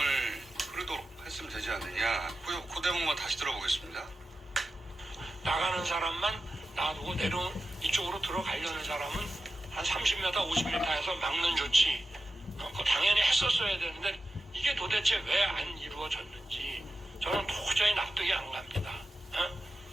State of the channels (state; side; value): normal; both; correlation 0.92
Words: 흐르도록 했으면 되지 않느냐. 그 대목만 다시 들어보겠습니다. 나가는 사람만 놔두고 이쪽으로 들어가려는 사람은 한 30m, 50m에서 막는 조치 그거 당연히 했었어야 되는데 이게 도대체 왜 안 이루어졌는지 저는 도저히 납득이 안 갑니다.